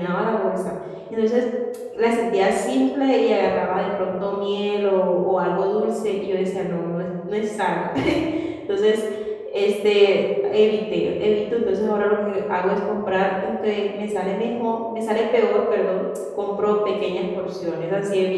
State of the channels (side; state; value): both; identical; correlation 1.00